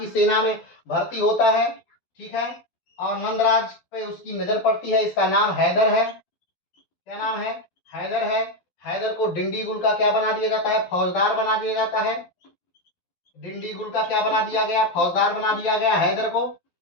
सेना में भर्ती होता है, ठीक है, और नंदराज पे उसकी नजर पड़ती है। इसका नाम हैदर है। क्या नाम है, हैदर है। हैदर को डिंडीगुल का क्या बना दिया जाता है, फौजदार बना दिया जाता है। डिंडीगुल का क्या बना दिया गया, फौजदार बना दिया गया हैदर को।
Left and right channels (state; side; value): late; right; 12 ms